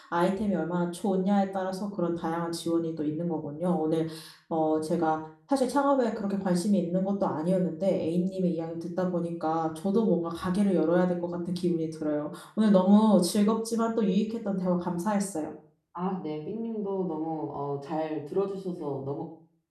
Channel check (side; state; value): both; identical; correlation 1.00